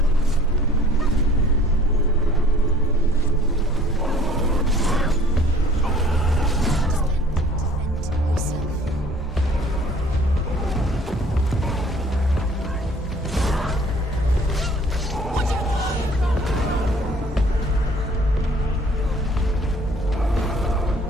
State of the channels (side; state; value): both; normal; correlation 0.54